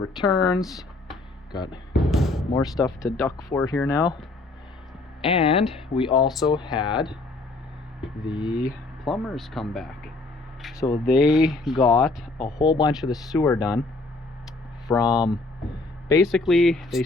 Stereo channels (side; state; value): right; quieter; 3.3 dB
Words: Got more stuff to duck for here now. And we also had the plumbers come back. So they got a whole bunch of the sewer done from, basically they